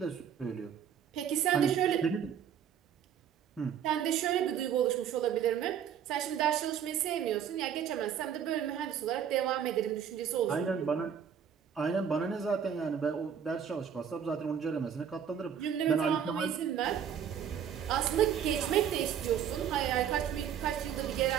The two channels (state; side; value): quieter; left; 8.4 dB